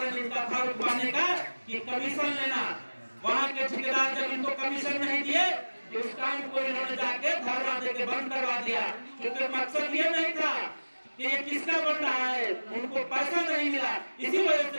इनका था रुकवाने का कि कमीशन लेना। वहाँ के ठेकेदार जब इनको कमीशन नहीं दिए, तो उस काम को इन्होंने जाके धरना देके बंद करवा दिया, क्योंकि मकसद ये नहीं था कि ये किसका बन रहा है, उनको पैसा नहीं मिला, इसी वजह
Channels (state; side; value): inverted; both; correlation -1.00